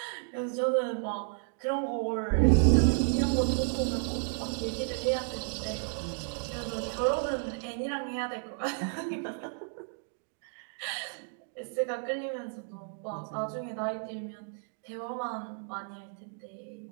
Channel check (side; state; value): left; silent; 56 dB below the other